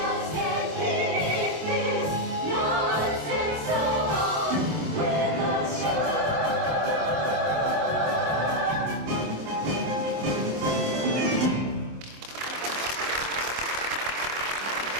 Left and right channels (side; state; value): left; late; 27 ms